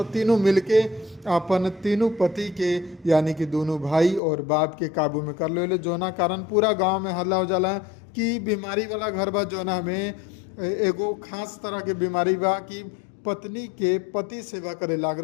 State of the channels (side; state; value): right; drops out; at 4.2 s